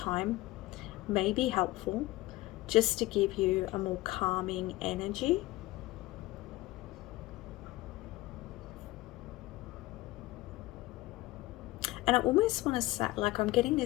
may be helpful, just to give you a more calming energy. And I almost want to say, like, I'm getting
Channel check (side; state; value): right; quieter; 19.0 dB